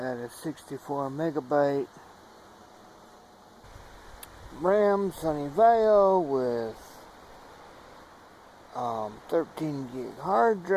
a 64 megabyte RAM Sunny Vaio with 13 gig hard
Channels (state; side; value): identical; both; correlation 1.00